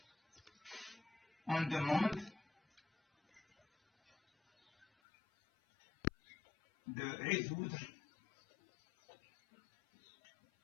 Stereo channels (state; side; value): drops out; right; at 4.9 s